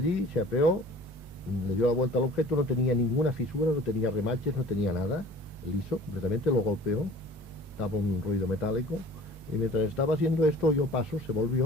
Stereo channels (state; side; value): normal; both; correlation 0.46